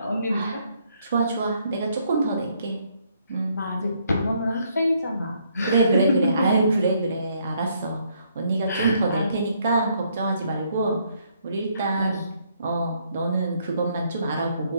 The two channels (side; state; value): both; inverted; correlation -0.70